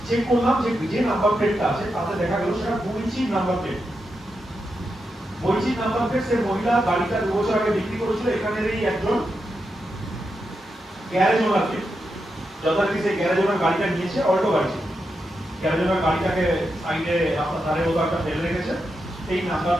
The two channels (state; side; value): normal; both; correlation 0.86